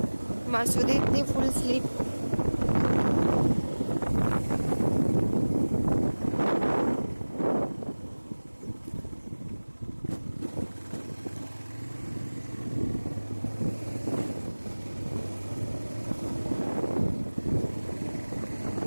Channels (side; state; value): both; inverted; correlation -1.00